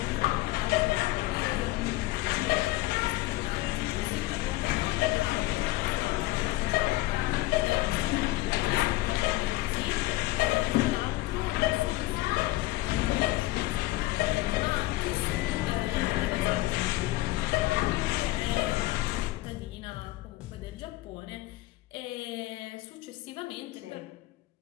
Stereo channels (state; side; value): quieter; right; 18.6 dB